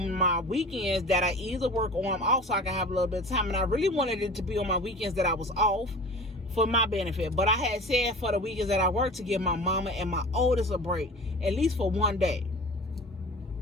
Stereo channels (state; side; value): normal; both; correlation 0.38